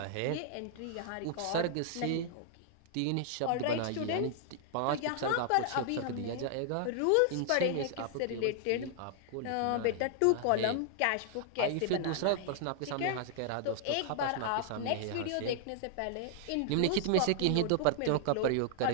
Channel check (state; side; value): different; both; correlation -0.01